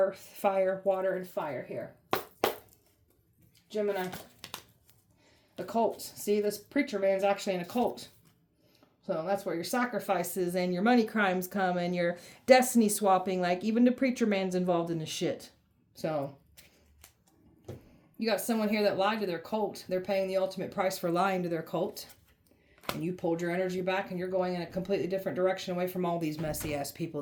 fire, water, and fire here. Gemini. Occult. See, this preacher man's actually an occult. So that's where your sacrifices and your money crimes come and your destiny swapping. Like even the preacher man's involved in this shit. So you got someone here that lied to their cult. They're paying the ultimate price for lying to their cult. And you pulled your energy back and you're going in a completely different direction away from all these messy ass people.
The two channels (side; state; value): both; identical; correlation 1.00